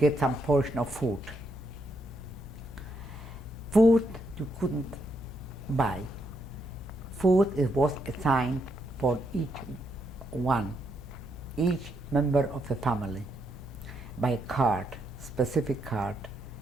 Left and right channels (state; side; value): normal; both; correlation 0.78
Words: some portion of food. Food you couldn't buy. Food was assigned for each one, each member of the family, by a card, specific card.